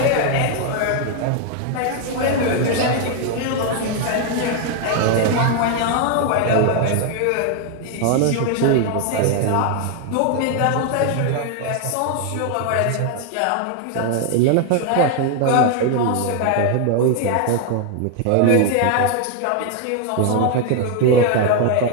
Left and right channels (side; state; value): both; different; correlation 0.01